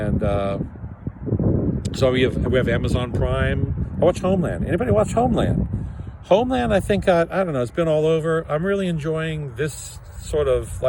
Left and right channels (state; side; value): identical; both; correlation 1.00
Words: so we have Amazon Prime. I watch Homeland. Anybody watch Homeland? Homeland, I think, I don't know, it's been all over. I'm really enjoying this sort of